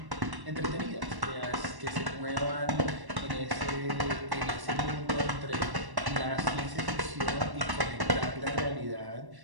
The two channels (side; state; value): left; late; 1.1 ms